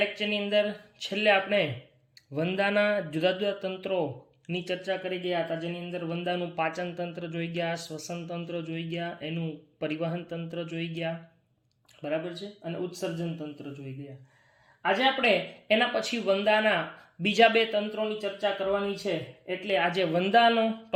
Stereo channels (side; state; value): both; identical; correlation 1.00